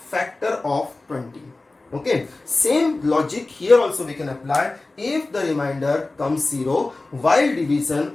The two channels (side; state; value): right; quieter; 3.2 dB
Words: of 20. Okay, same logic here also we can apply. If the remainder comes 0 while